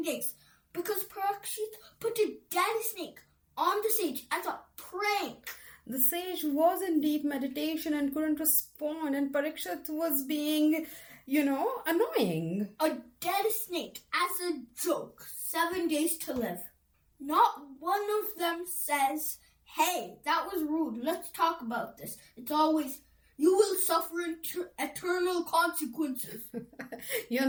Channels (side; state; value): both; identical; correlation 1.00